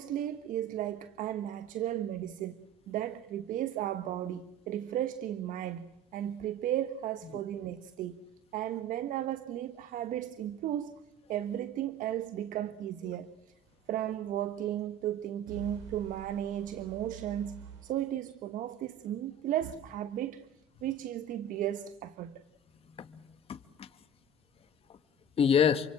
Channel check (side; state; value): left; quieter; 3.7 dB